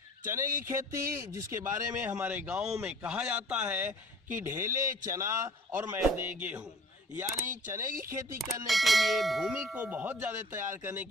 चने की खेती जिसके बारे में हमारे गाँव में कहा जाता है कि ढेले चना और मैदे गेहूँ, यानी चने की खेती करने के लिए भूमि को बहुत ज़्यादा तैयार करने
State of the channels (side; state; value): both; normal; correlation 0.48